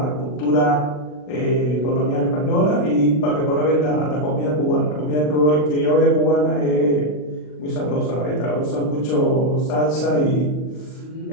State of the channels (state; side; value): late; right; 40 ms